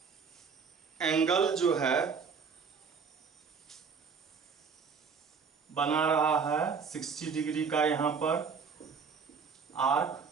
angle जो है बना रहा है 60 डिग्री का यहाँ पर आर्क,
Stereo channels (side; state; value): left; quieter; 5.8 dB